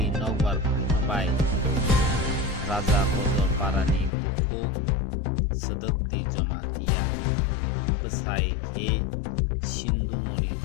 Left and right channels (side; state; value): right; drops out; at 4.1 s